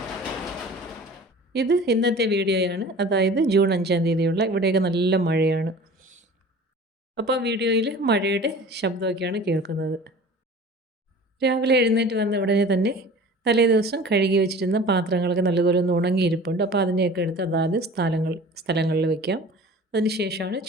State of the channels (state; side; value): normal; both; correlation 0.42